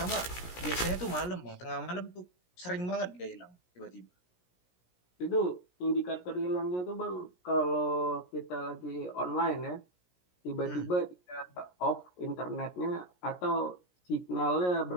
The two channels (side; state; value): right; late; 17 ms